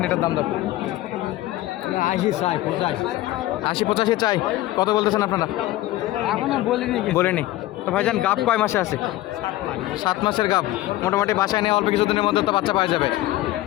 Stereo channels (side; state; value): right; quieter; 16.3 dB